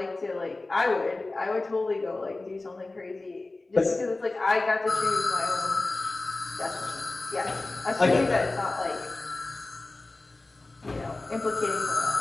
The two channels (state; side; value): quieter; right; 3.2 dB